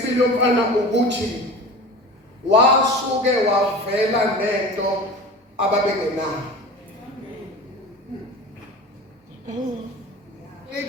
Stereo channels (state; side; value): normal; both; correlation 0.35